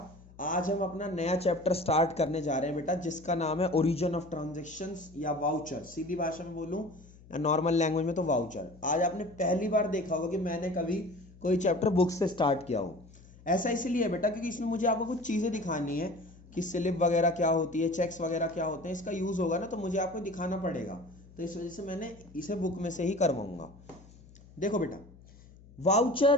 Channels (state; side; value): noise; left; hum, 23 dB below the sound